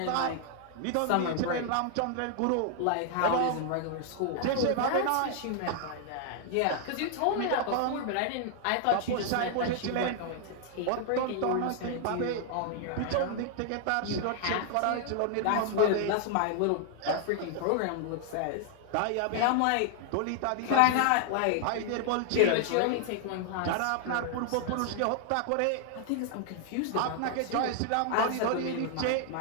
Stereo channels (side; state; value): both; different; correlation 0.00